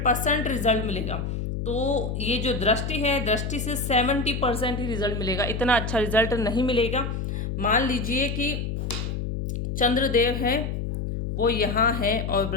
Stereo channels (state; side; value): noise; left; hum, 3 dB below the sound